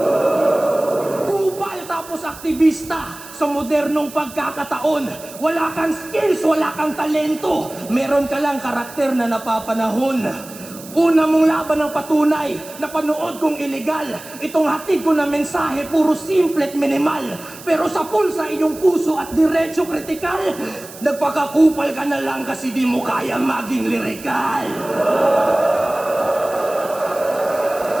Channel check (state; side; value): noise; right; hiss, 17 dB below the sound